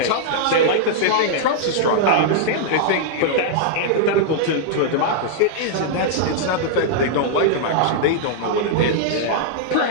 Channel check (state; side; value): different; both; correlation -0.01